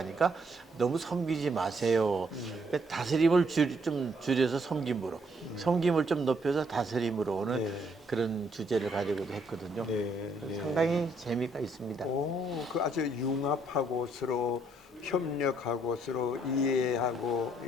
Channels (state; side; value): normal; both; correlation 0.70